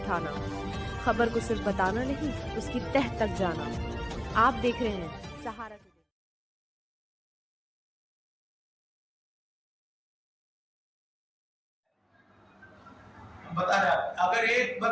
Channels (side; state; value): both; identical; correlation 1.00